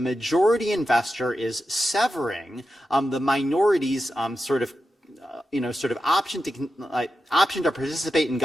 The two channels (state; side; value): normal; both; correlation 0.89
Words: investor is severing the minority's sort of option to participate in